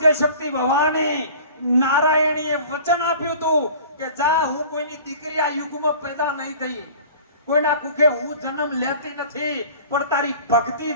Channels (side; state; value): both; inverted; correlation -0.44